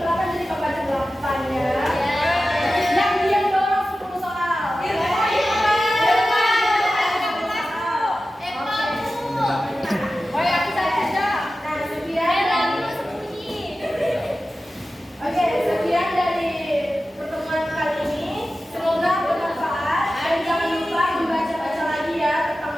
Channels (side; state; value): both; normal; correlation 0.94